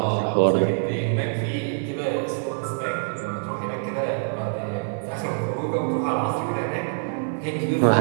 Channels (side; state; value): left; silent; digital silence